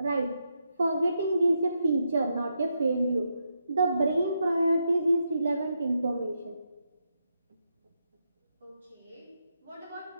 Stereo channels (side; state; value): both; inverted; correlation -0.82